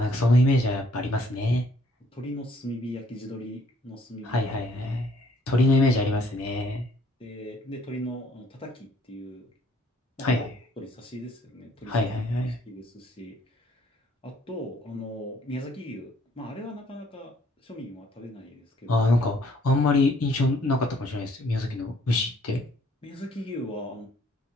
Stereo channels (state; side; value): normal; both; correlation 0.63